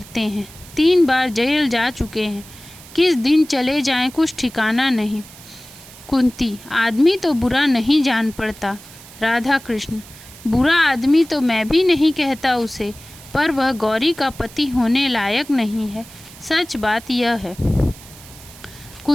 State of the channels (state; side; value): noise; right; hiss, 19 dB below the sound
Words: हैं। 3 बार जेल जा चुके हैं। किस दिन चले जाएं कुछ ठिकाना नहीं। कुंती, आदमी तो बुरा नहीं जान पड़ता। राधा कृष्ण, बुरा आदमी तो मैं भी नहीं कहता उसे, पर वह गौरी का पति होने लायक नहीं है। सच बात यह है।